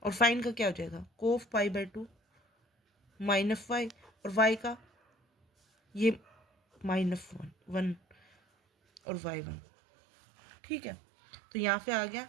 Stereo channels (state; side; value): drops out; left; at 9.0 s